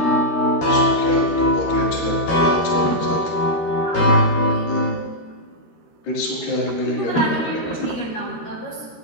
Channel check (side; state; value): right; late; 13 ms